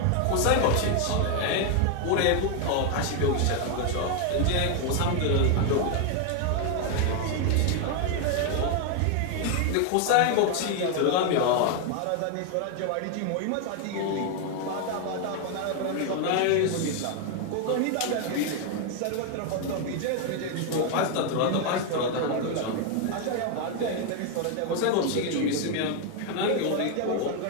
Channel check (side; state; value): both; different; correlation 0.01